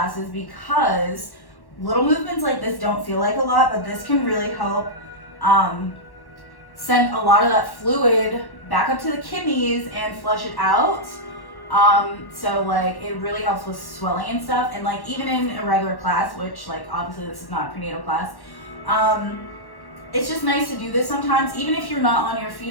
because little movements like this don't feel like a lot, but this can really help send a lot of that fluid back up to the kidneys and flush it out. So like it really helps with swelling and stuff, and like even in a regular class, which like obviously this is not a prenatal class, it's just nice to do this sometimes, even if you're not on your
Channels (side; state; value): right; late; 1.1 ms